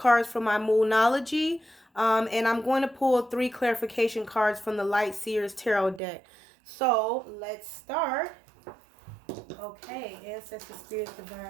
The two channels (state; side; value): drops out; left; at 6.0 s